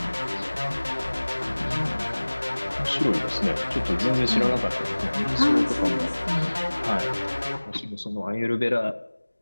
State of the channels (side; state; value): both; inverted; correlation -1.00